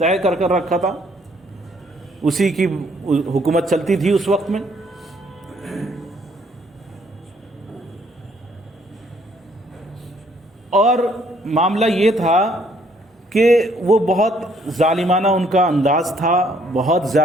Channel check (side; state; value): both; normal; correlation 0.65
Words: کر رکھا تھا. اسی کی حکومت چلتی تھی اس وقت میں. اور معاملہ یہ تھا کہ وہ بہت ظالمانہ ان کا انداز تھا، بہت